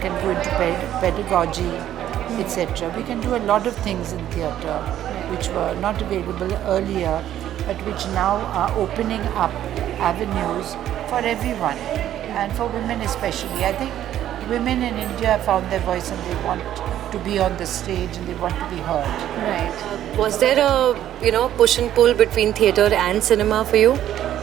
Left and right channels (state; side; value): quieter; left; 11.7 dB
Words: go into pedagogy, etc. We can do a lot of things in theatre which were not available earlier, but which now are opening up avenues for everyone, and for women especially. I think women in India have found their voice and they want to be on the stage and they want to be heard. Right. Was there a push and pull between theatre and cinema for you?